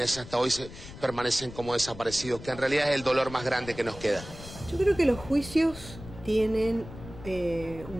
hasta hoy permanecen como desaparecidos, que en realidad es el dolor más grande que nos queda. Yo creo que los juicios tienen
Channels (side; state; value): left; noise; rumble, 15 dB below the sound